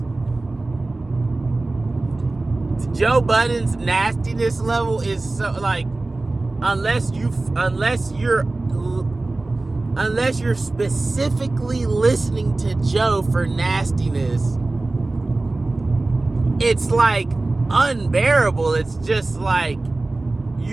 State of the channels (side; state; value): left; quieter; 3.1 dB